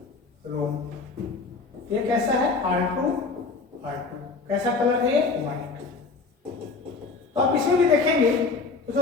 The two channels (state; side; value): quieter; right; 4.2 dB